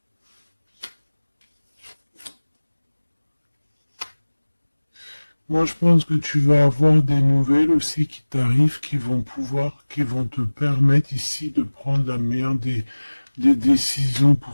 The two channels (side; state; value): both; inverted; correlation -1.00